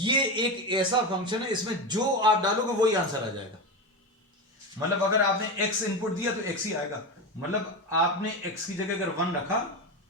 एक ऐसा फंक्शन है, इसमें जो आप डालोगे वही आंसर आ जाएगा। मतलब अगर आपने x इनपुट दिया तो x ही आएगा। मतलब आपने x की जगह अगर 1 रखा,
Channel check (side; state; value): both; normal; correlation 0.19